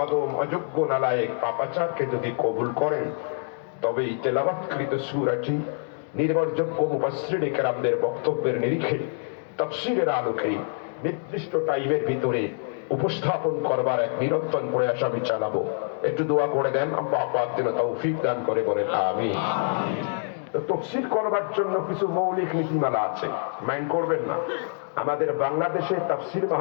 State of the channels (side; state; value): right; silent; 61 dB below the other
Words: অদম অযোগ্য নালায়েক পাপাচারকে যদি কবুল করেন, তবে এই তেলাওয়াতকৃত সূরাটি নির্ভরযোগ্য মুফাসসিরে কেরামদের বক্তব্যের নিরিখে তাফসীরের আলোকে নির্দিষ্ট টাইমের ভিতরে উপস্থাপন করবার এক নিরন্তর প্রয়াস আমি চালাবো। একটু দোয়া করে দেন, আল্লাহ পাক যেন তৌফিক দান করে বলেন আমিন। তাফসীর করবার জন্য কিছু মৌলিক নীতিমালা আছে, মাইন্ড করবেন না। আমাদের বাংলাদেশে তাফসীর